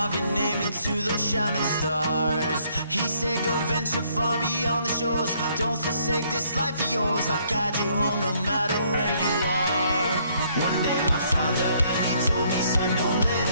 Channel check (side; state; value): both; inverted; correlation -0.67